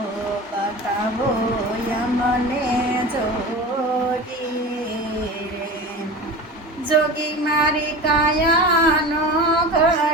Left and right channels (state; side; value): normal; both; correlation 0.32